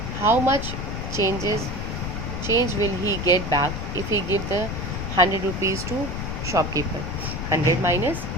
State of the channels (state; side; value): noise; left; rumble, 5 dB below the sound